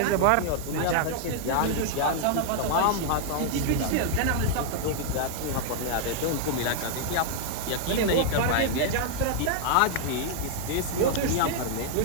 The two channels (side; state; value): both; different; correlation -0.01